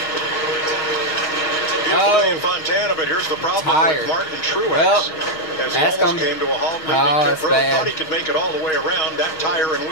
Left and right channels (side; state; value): right; late; 6.4 ms